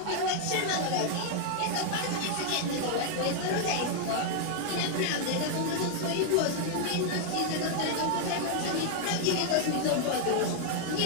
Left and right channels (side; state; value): both; different; correlation 0.00